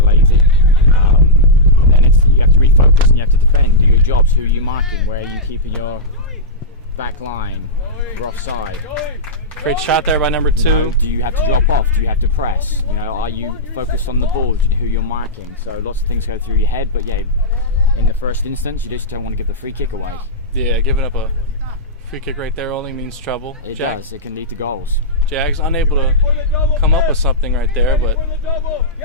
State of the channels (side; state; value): both; normal; correlation -0.11